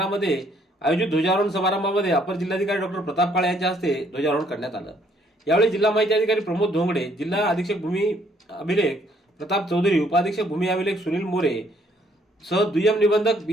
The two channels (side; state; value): both; normal; correlation 0.66